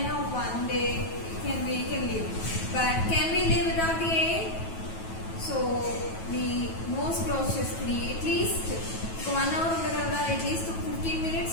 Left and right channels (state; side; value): late; right; 9.2 ms